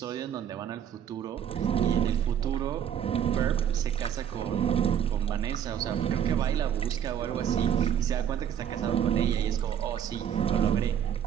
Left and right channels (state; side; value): quieter; left; 9.3 dB